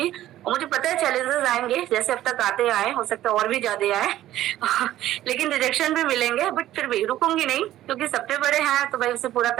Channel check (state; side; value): quieter; left; 13.7 dB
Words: और मुझे पता है चैलेंजेस आएंगे, जैसे अब तक आते आए, हो सकता है और भी ज्यादा आए लेकिन रिजेक्शन भी मिलेंगे, बट फिर भी रुकूंगी नहीं, क्योंकि सबसे बड़े हैं तो भाई उसे पूरा